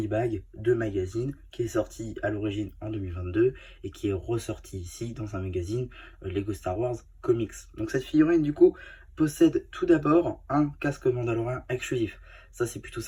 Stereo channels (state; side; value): identical; both; correlation 1.00